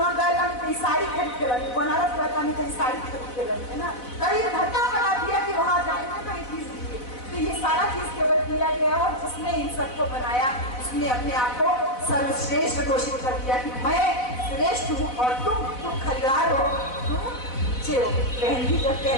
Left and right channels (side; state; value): right; late; 4.0 ms